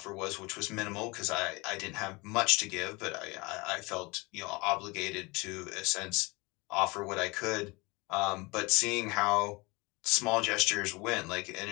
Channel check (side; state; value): right; quieter; 25.5 dB